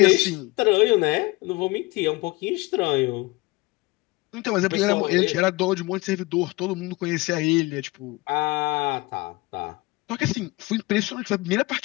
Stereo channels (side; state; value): right; quieter; 22.6 dB